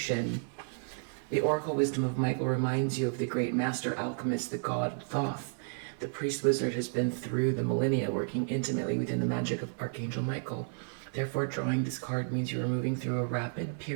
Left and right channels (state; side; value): silent; left; 56 dB below the other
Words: The oracle wisdom of Michael reminds you of the great master alchemist, the god Thoth. The priest wizard has been through the millennia working intimately within the magic of Archangel Michael. Therefore, drawing this card means you are moving through a rapid